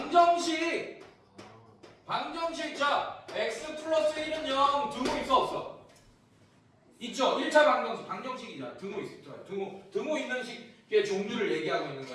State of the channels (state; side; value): identical; both; correlation 1.00